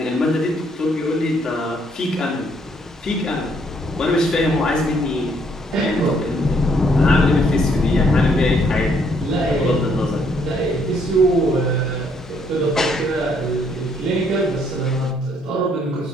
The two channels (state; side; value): normal; both; correlation 0.68